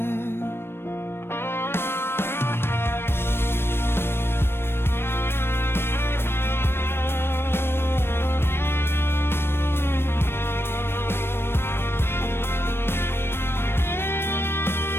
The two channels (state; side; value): late; right; 0.12 ms